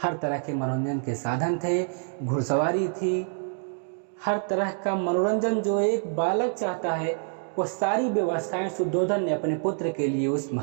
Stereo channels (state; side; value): silent; left; digital silence